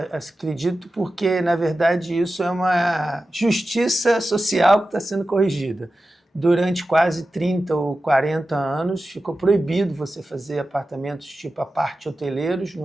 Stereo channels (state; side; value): normal; both; correlation 0.93